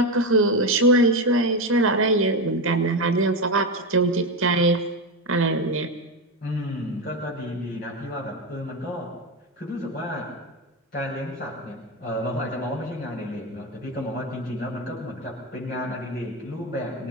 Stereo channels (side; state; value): both; normal; correlation 0.14